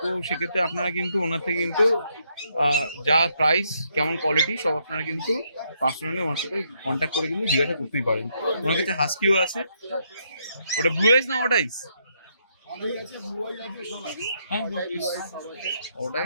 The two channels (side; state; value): both; inverted; correlation -0.75